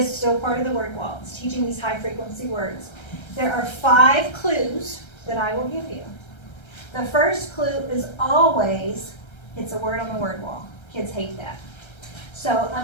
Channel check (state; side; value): late; right; 1.3 ms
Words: still part of the word wall. It's teaching these high frequency words. There are 5 clues that I will give you. The first clue is always, it's a word on the word wall. Kids hate that. So